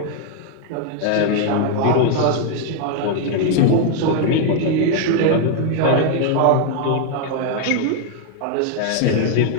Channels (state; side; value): different; both; correlation 0.01